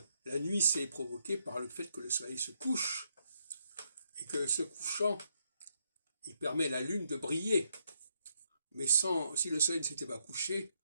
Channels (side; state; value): both; inverted; correlation -0.77